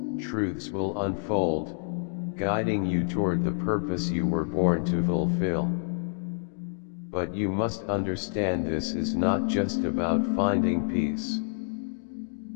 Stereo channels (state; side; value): silent; right; digital silence